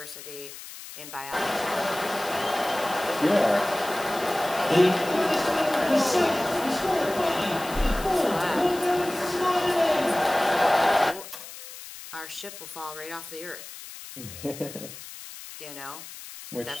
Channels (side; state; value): left; noise; hiss, 14 dB below the sound